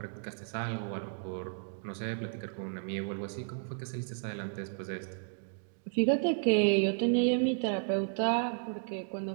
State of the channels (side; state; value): left; silent; digital silence